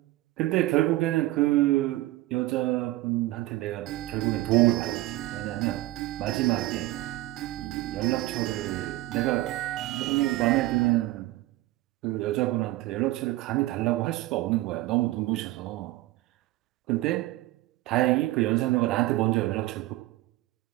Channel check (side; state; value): left; quieter; 17.5 dB